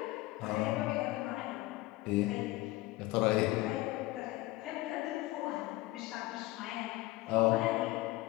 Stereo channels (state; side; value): quieter; right; 18.9 dB